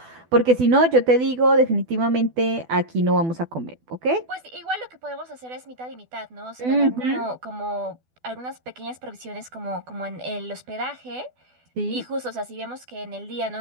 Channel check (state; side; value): late; left; 12 ms